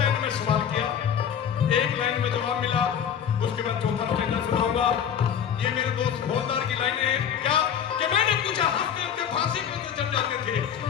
में सवाल किया, 1 लाइन में जवाब मिला। उसके बाद चौथा स्टेजा सुनाऊंगा। ये मेरे दोस्त हवलदार की लाइनें हैं। क्या कि मैंने पूछा हंसते हंसते फांसी कैसे चढ़ जाते थे?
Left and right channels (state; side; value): quieter; right; 8.4 dB